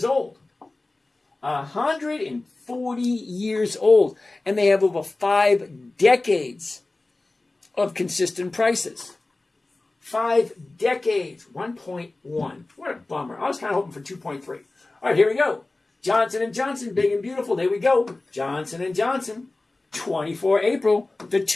old. 140 years old. And they have over 5 decades of consistent prices. 5 decades. 1.1. What a bummer. I was kind of hoping for 2.3. All right, here we go. Johnson & Johnson, big and beautiful. There we go. Johnson & Johnson, 24 April, the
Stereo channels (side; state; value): right; quieter; 3.1 dB